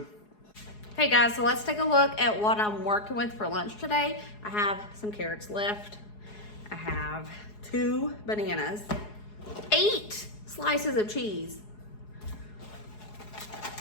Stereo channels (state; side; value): late; right; 4.8 ms